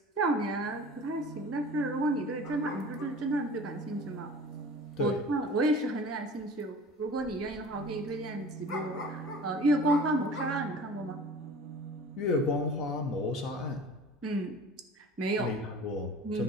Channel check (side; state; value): both; normal; correlation 0.41